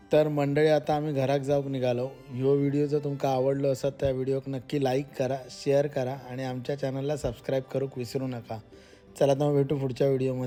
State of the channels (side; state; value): both; identical; correlation 1.00